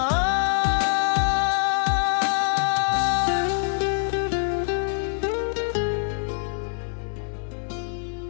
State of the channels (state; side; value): silent; right; 62 dB below the other